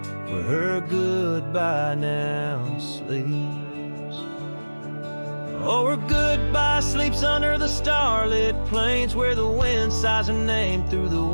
where her goodbye now sleeps. Oh, her goodbye sleeps under the starlit plains where the wind sighs her name through the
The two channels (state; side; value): inverted; both; correlation -1.00